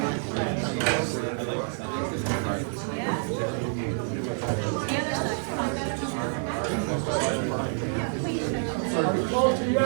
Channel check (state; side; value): silent; left; 56 dB below the other